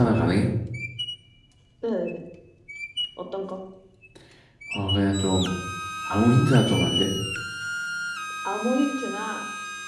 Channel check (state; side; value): identical; both; correlation 1.00